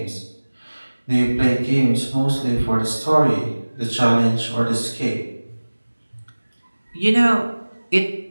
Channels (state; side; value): inverted; both; correlation -1.00